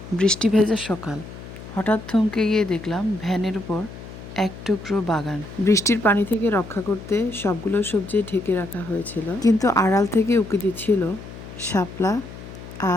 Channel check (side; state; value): left; noise; hum, 14 dB below the sound